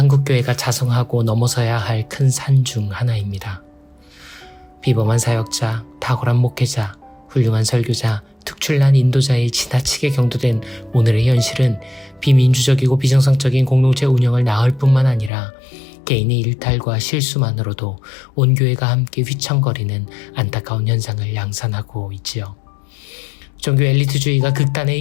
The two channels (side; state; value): right; drops out; at 15.3 s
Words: 자성하고 넘어서야 할 큰 산 중 하나입니다. 비범한 사역자, 탁월한 목회자, 훌륭한 설교자, 특출난 인도자에 지나치게 경도된 오늘의 현실은 비민주적이고 비정상적인 공동체 운영을 낳을 뿐만 아니라 개인의 일탈과 실수만으로도 온 교회가 함께 휘청거리는 안타까운 현상을 양산하고 있지요. 종교 엘리트주의가 극단에